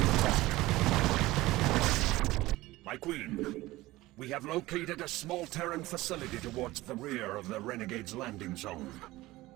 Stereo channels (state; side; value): quieter; left; 18.4 dB